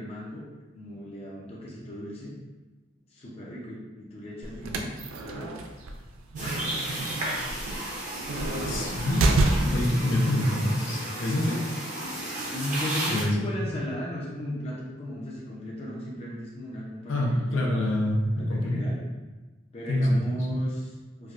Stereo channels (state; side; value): normal; both; correlation 0.75